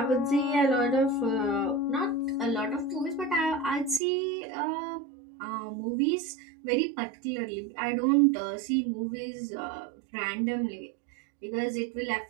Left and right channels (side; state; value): left; drops out; at 4.0 s